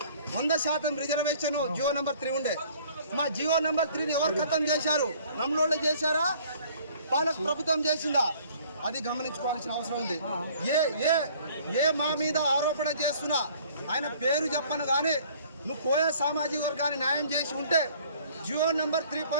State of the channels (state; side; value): inverted; both; correlation -0.55